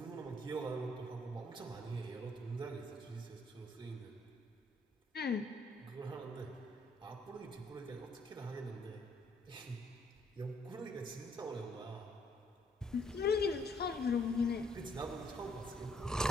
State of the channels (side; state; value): both; normal; correlation 0.68